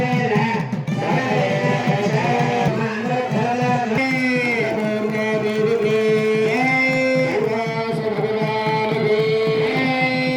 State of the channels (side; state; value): both; identical; correlation 1.00